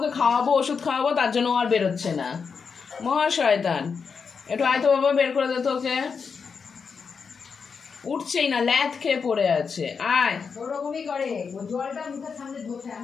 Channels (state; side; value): quieter; right; 5.7 dB